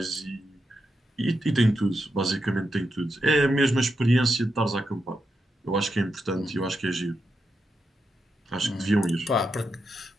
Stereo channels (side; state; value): both; normal; correlation 0.85